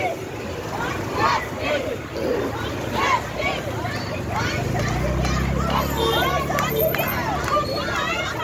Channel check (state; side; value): identical; both; correlation 1.00